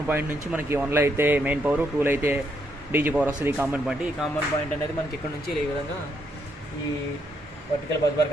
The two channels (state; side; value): normal; both; correlation 0.75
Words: పాయింట్ నుంచి మనకి 1లో అయితే మెయిన్ పవర్, 2లో అయితే డీజీ పవర్ వస్తుంది. ఈ కామన్ పాయింట్, ఈ కామన్ పాయింట్ అనేది మనకి ఇక్కడ నుంచి ఈ విధంగా ఈ వర్టికల్ బస్